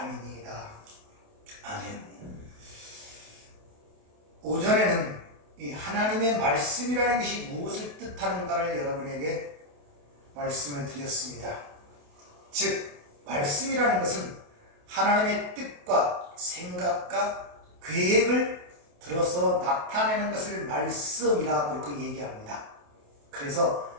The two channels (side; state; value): left; late; 28 ms